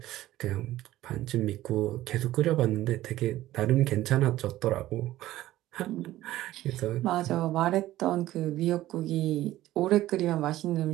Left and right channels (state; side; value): quieter; left; 15.1 dB